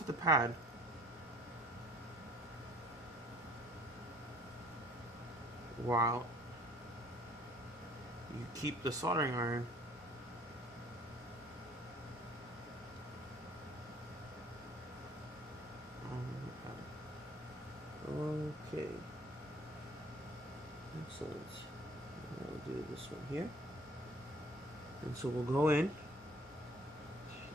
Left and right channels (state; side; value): normal; both; correlation 0.54